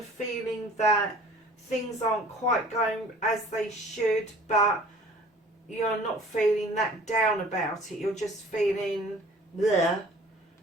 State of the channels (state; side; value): normal; both; correlation 0.49